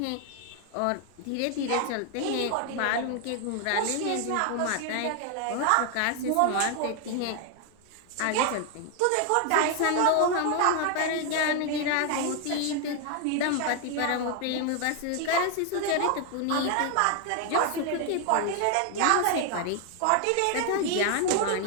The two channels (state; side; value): different; both; correlation 0.00